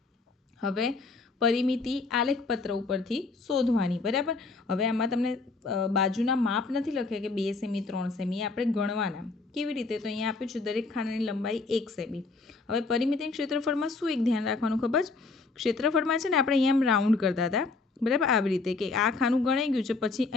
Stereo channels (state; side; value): quieter; right; 3.9 dB